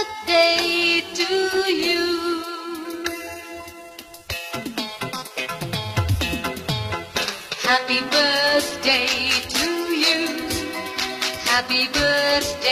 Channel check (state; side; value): identical; both; correlation 1.00